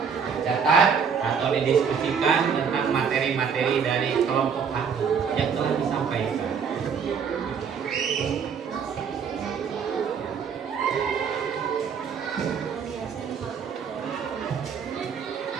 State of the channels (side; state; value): left; quieter; 6.6 dB